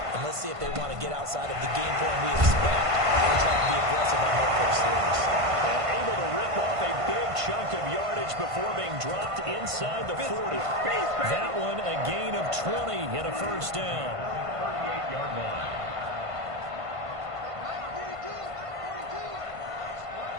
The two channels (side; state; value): left; late; 1.5 ms